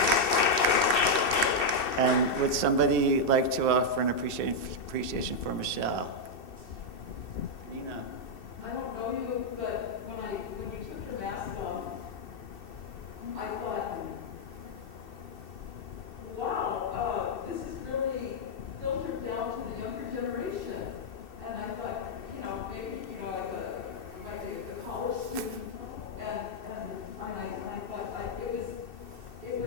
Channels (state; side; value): late; right; 2.7 ms